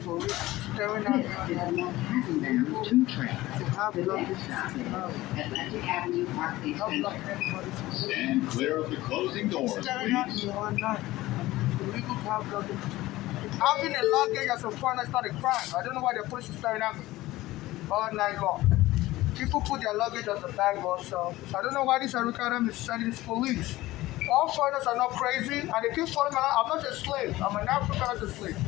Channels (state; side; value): quieter; right; 17.6 dB